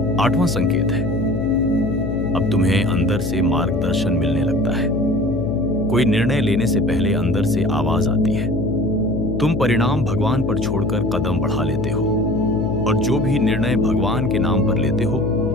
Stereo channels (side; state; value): left; noise; hum, 3 dB below the sound